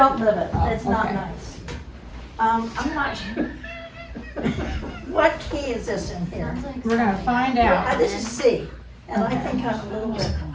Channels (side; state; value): both; identical; correlation 1.00